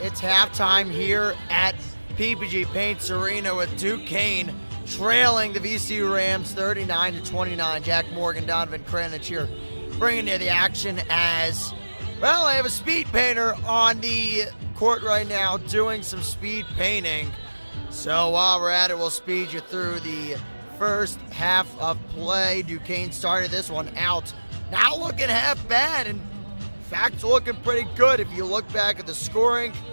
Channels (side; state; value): both; inverted; correlation -1.00